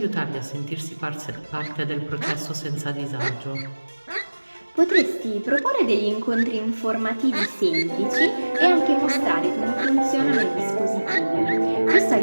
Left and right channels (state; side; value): inverted; both; correlation -1.00